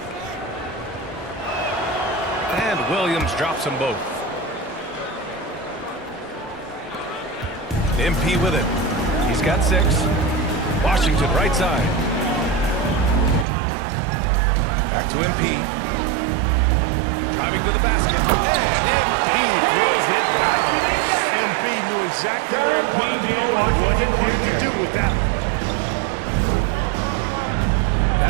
And Williams drops them both. MP with it. He's got 6. Washington right side. Back to MP. Driving to the basket. And MP throws it down. MP knew exactly where he wanted to go and what he wanted to do with that one.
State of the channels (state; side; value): drops out; left; at 13.5 s